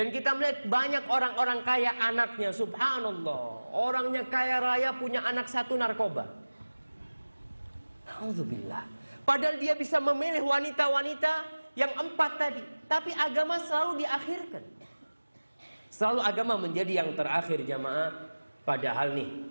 kita melihat banyak orang-orang kaya anaknya, subhanallah, orangnya kaya raya punya anak 1 narkoba. Alhamdulillah. Padahal dia bisa memilih wanita-wanita yang 4 tadi, tapi agama selalu diakhirkan. Selalu agama menjadi yang terakhir jamaah. Padahal nih,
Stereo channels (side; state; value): both; inverted; correlation -1.00